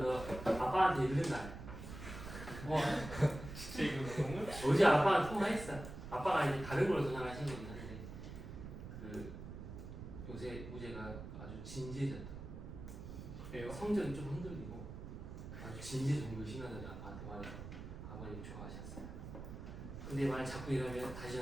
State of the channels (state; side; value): noise; right; rumble, 10 dB below the sound